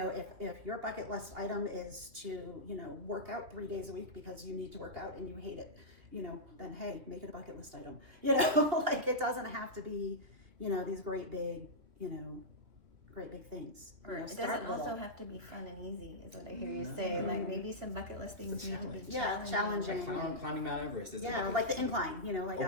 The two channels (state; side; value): late; left; 3.0 ms